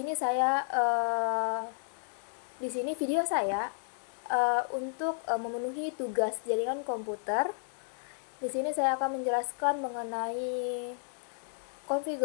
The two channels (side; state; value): right; silent; 56 dB below the other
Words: sini video saya untuk memenuhi tugas jaringan komputer. Di sini saya akan menjelaskan mengenai